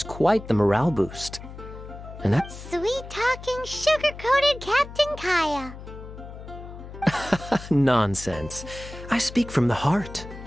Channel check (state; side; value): noise; left; hum, 13 dB below the sound